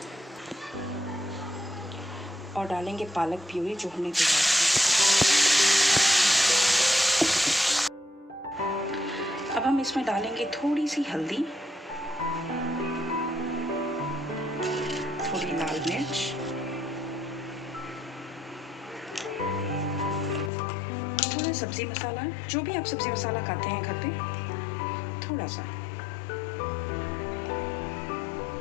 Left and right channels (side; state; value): right; drops out; at 20.5 s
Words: और डालेंगे पालक प्यूरी जो हमने तैयार की। अब हम इसमें डालेंगे थोड़ी सी हल्दी, थोड़ी लाल मिर्च, थोड़ा सब्जी मसाला, जो भी आप सब्जी मसाला खाते हैं घर पे, थोड़ा सा,